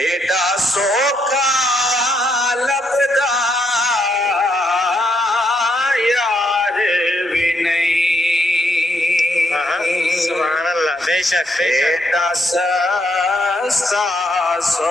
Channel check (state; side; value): normal; both; correlation 0.76